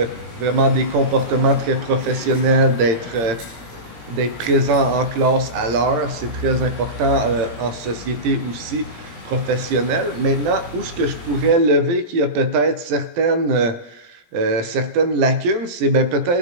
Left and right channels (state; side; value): late; left; 17 ms